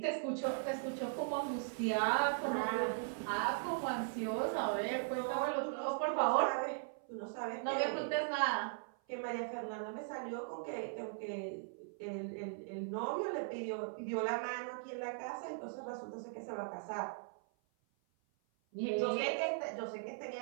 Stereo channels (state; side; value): silent; left; 52 dB below the other